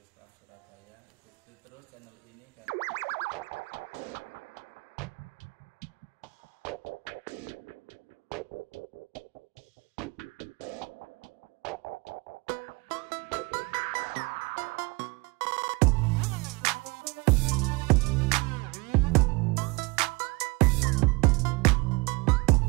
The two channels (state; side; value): quieter; left; 25.8 dB